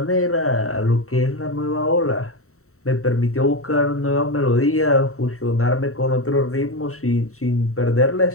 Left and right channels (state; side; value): late; right; 0.64 ms